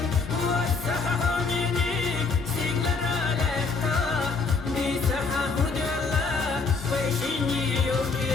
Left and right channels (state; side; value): quieter; right; 4.5 dB